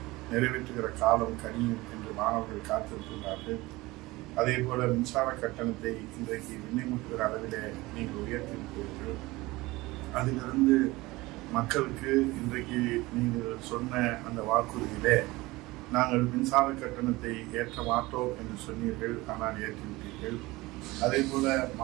நிறைவேற்றுகிற காலம் கனியும் என்று மாணவர்கள் காத்திருக்கிறார்கள். அதே போல மின்சார கட்டணத்தை இன்றைக்கு விண்ணப்பிக்கிற அளவிலே நீங்கள் உயர்த்தியிருக்கிறீர்கள். அதிலிருந்து மக்களுக்கு இன்றைக்கு நீங்கள் சொன்ன அந்த வாக்குறுதியிலே நாங்கள் மின்சார கட்டணத்தை ஏற்ற மாட்டோம் என்று சொன்னீர்கள், ஆனால் ஏற்றிவிட்டீர்கள். அதே போல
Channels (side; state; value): left; quieter; 20.7 dB